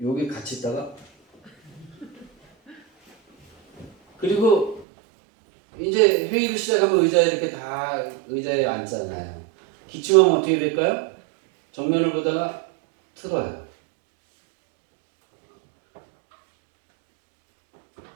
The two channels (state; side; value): drops out; left; at 4.9 s